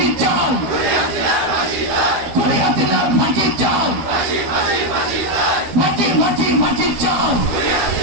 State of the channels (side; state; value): left; late; 12 ms